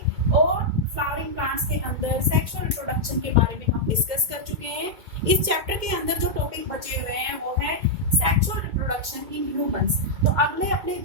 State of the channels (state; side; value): late; left; 2.1 ms